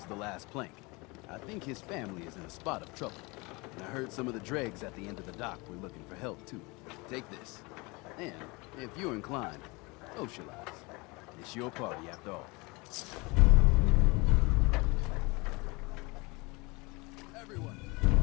the last plank. I think his family is in a spot of trouble. And I heard some of the dregs at the end of the dock were looking for help, too. Take this. And, if you're inclined, socialize. It's your party, after all.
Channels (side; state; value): right; quieter; 26.2 dB